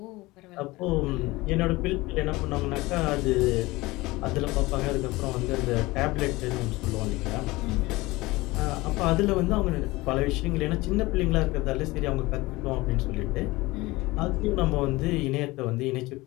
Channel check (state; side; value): quieter; right; 20.8 dB